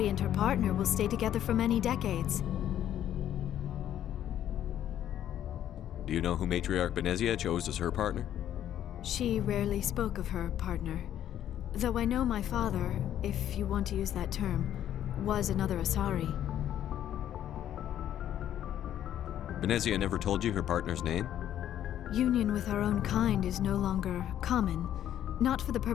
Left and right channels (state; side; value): quieter; right; 11.1 dB